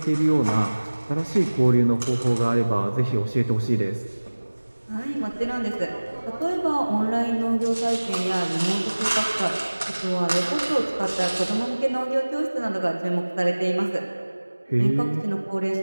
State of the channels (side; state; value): both; inverted; correlation -1.00